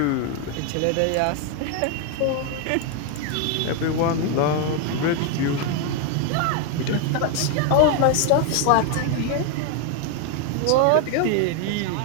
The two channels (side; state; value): both; different; correlation 0.01